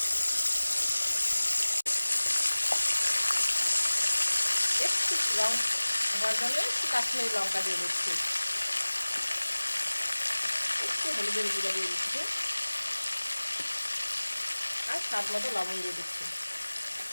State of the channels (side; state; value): both; inverted; correlation -1.00